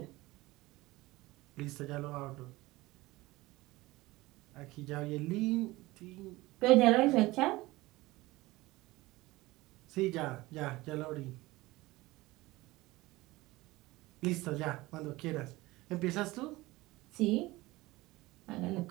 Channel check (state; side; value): quieter; left; 19.9 dB